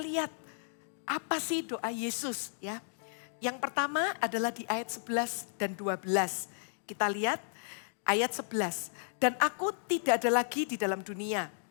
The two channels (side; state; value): right; silent; digital silence